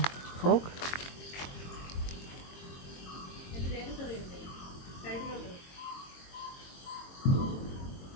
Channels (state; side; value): late; right; 22 ms